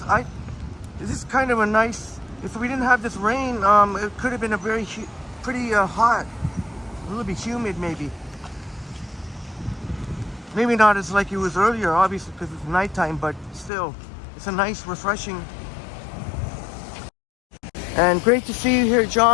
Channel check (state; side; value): drops out; right; at 13.7 s